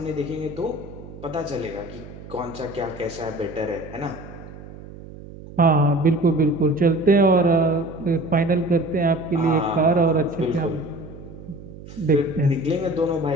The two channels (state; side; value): noise; right; hum, 16 dB below the sound